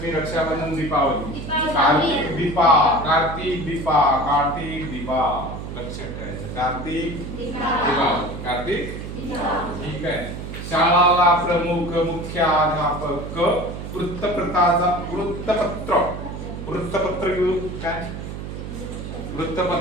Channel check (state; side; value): noise; right; hum, 8 dB below the sound